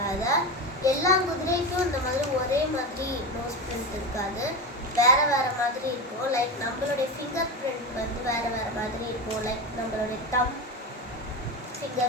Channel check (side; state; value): both; normal; correlation 0.21